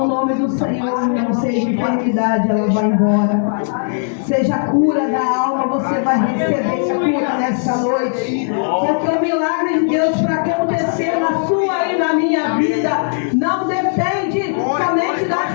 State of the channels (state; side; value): silent; right; 61 dB below the other